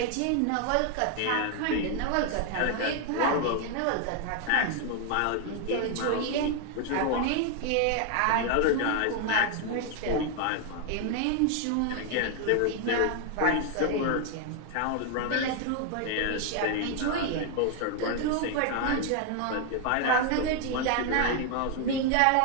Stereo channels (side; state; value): both; different; correlation 0.01